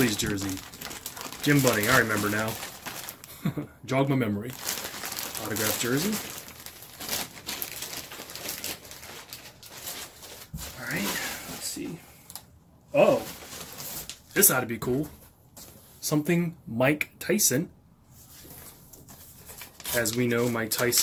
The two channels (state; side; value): identical; both; correlation 1.00